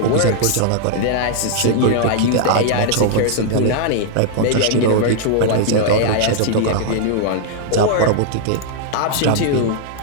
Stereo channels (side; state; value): both; different; correlation 0.00